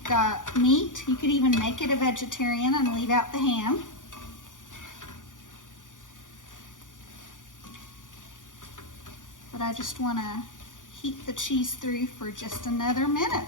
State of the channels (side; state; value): right; late; 0.87 ms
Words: got meat. You could even make it a vegetarian and leave out the ham. But I just want to heat the cheese through for just another minute